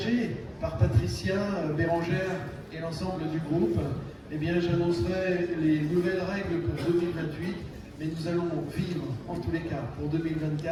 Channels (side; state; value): both; identical; correlation 1.00